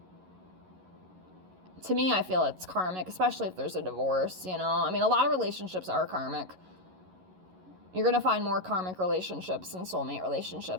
to me, I feel it's karmic, especially if there's a divorce, you know? I mean, a lot of relationships are karmic. You're going to find more karmic relationships and soulmate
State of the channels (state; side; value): late; left; 11 ms